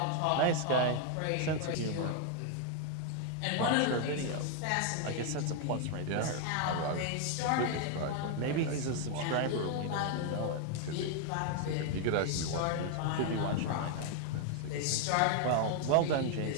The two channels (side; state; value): both; different; correlation 0.00